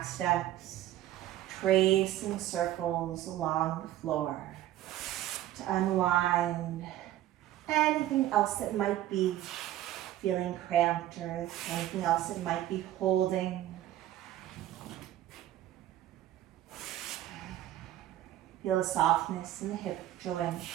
steps, tracing circles along the floor to unwind anything else that might be feeling cramped or anything else that might be holding. Feel the softness in the hip joint.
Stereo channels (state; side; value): quieter; left; 13.6 dB